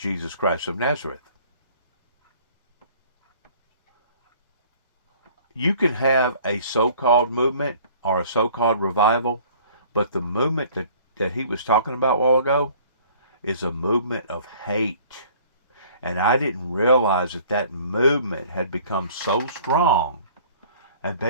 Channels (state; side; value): inverted; both; correlation -0.53